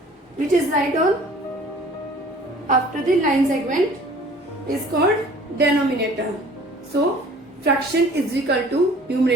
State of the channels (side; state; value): both; normal; correlation 0.50